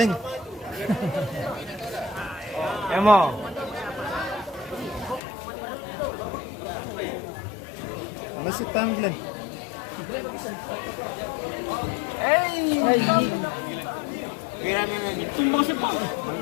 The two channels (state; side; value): drops out; right; at 5.2 s